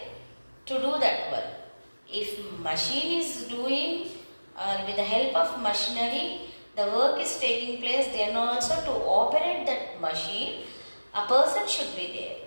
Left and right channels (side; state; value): both; inverted; correlation -1.00